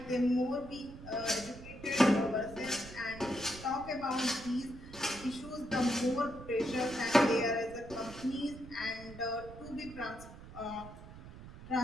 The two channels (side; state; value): right; noise; rumble, 15 dB below the sound